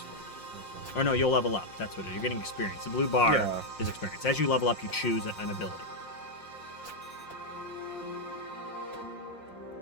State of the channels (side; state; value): right; late; 5.6 ms